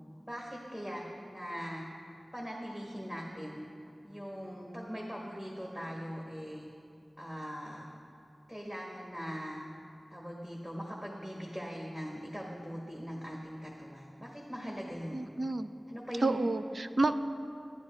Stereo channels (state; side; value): normal; both; correlation 0.96